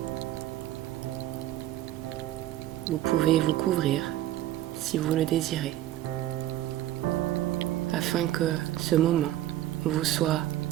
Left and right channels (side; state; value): left; quieter; 13.9 dB